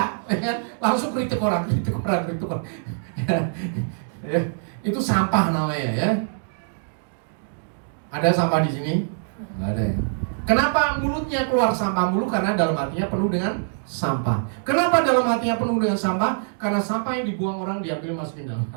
ya, langsung kritik orang. Ya, itu sampah namanya ya. Ada sampah di sini? Nggak ada ya. Kenapa mulutnya keluar sampah mulu? Karena dalam hatinya penuh dengan sampah. Kenapa dalam hatinya penuh dengan sampah? Karena sampah yang dibuang orang diambil masukin dalam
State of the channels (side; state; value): left; silent; digital silence